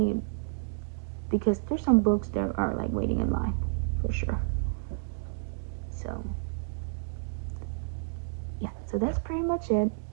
because there's some books that are like waiting in line for sure. So yeah, so that's pretty much it.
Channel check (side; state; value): left; silent; digital silence